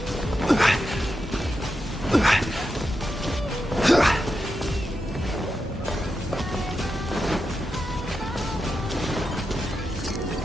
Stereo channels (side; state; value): both; normal; correlation 0.88